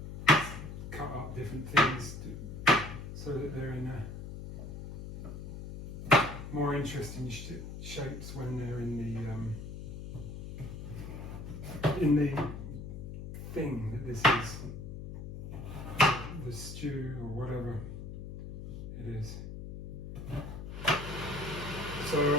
cut up different things so that they're in more interesting shapes when they're in the thing that this is. The stew or whatever it is. So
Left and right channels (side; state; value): left; noise; hum, 8 dB below the sound